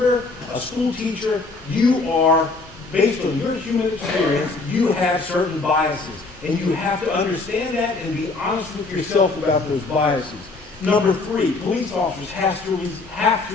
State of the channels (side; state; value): right; quieter; 3.7 dB